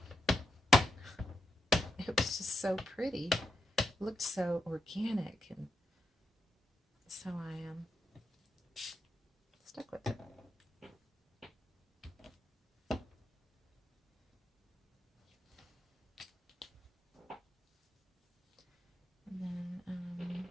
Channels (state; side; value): normal; both; correlation 0.84